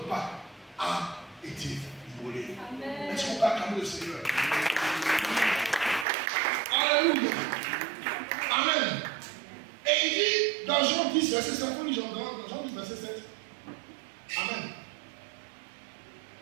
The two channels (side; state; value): left; drops out; at 6.1 s